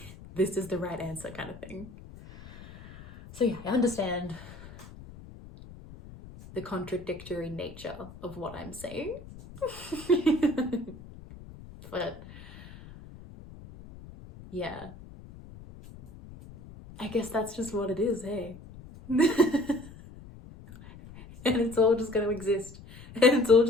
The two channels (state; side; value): noise; left; rumble, 17 dB below the sound